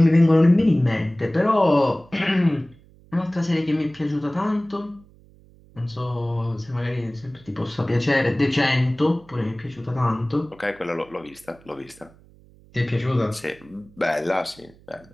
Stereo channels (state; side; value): noise; right; hum, 26 dB below the sound